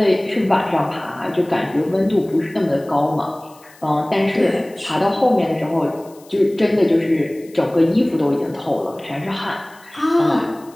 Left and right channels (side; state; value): left; noise; hiss, 26 dB below the sound